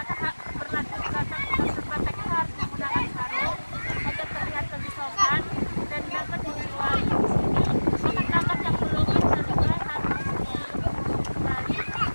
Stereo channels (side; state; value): both; inverted; correlation -1.00